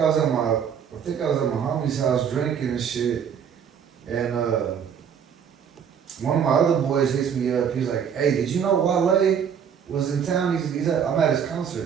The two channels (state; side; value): quieter; left; 7.7 dB